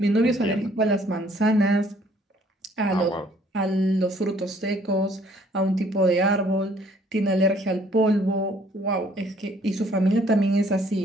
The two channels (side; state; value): both; normal; correlation 0.61